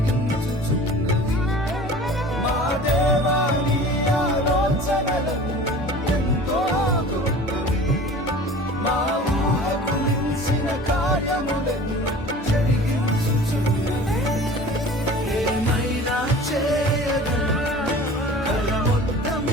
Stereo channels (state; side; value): normal; both; correlation 0.42